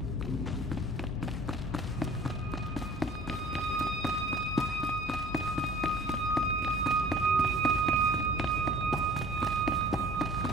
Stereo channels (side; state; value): both; normal; correlation 0.47